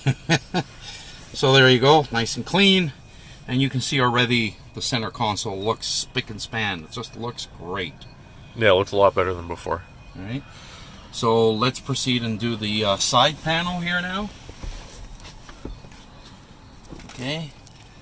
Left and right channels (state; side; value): identical; both; correlation 1.00